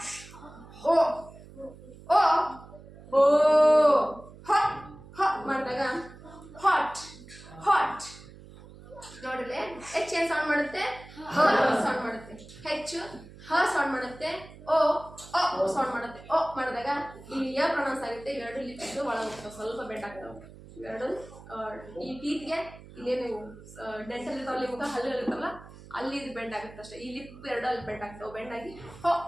ಓ ಓ ಓ, ಹ ಹ ಮಾಡಿದಾಗ ಹಾಟ್, ಹಾಟ್. ನೋಡಿದ್ರೆ ಹೆಚ್ ಏನ್ ಸೌಂಡ್ ಮಾಡುತ್ತೆ, ಹ ಸೌಂಡ್ ಮಾಡುತ್ತೆ, ಹೆಚ್ಚು ಹ ಸೌಂಡ್ ಮಾಡುತ್ತೆ, ಓ ಸೌಂಡ್ ಮಾಡುತ್ತೆ. ಓ ಮಾಡಿದಾಗ ಇಲ್ಲಿ ಯ ಪ್ರೊನೌನ್ಸ್ ಆಗುತ್ತೆ, ಎರಡು ಲಿಪ್ಸ್ ಒಳಗೆ ಹೋಗ್ತಾವೆ, ಸ್ವಲ್ಪ ಬೆಂಡ್ ಆಗ್ತಾವೆ ಎರಡು. ಈ ಟೀತ್ಗೆ ಇಲ್ಲೇನು ಡೆಂಟಲ್ ಇರ್ತಾವಲ್ಲ, ಮುಖ ಹಲ್ಲು ಇರ್ತಾವಲ್ಲ ಅಲ್ಲಿ ಇದು ಬೆಂಡ್ ಆಗುತ್ತೆ ಅಷ್ಟೇ. ಈ ಲಿಪ್ ಎರಡು ಅಲ್ಲಿ ಬೆಂಡ್ ಆಗ್ತಾವೆ, ಬೆಂಡ್ ಆಗಿ ಹೋ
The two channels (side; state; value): right; noise; hum, 19 dB below the sound